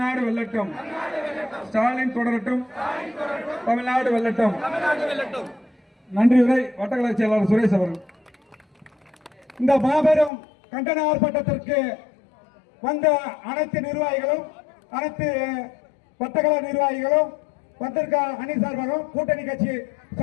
வெல்லட்டும். ஸ்டாலின் தொடரட்டும், தமிழ்நாடு வெல்லட்டும். நன்றி. உரை வட்டக்கழக செயலாளர் சுரேஷ் அவர்கள். இந்த மாபெரும் கண்டன ஆர்ப்பாட்டத்திற்கு வந்த அனைத்து நிர்வாகிகளும், அனைத்து வட்டக்கழக நிர்வாகிகளும், வந்திருக்க அணி சார்பாகவும் கூட்டணி கட்சி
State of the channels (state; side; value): drops out; right; at 10.3 s